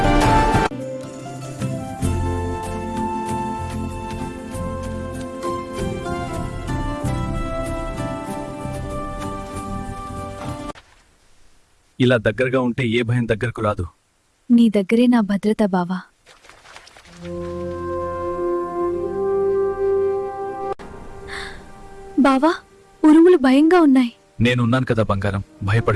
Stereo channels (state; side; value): identical; both; correlation 1.00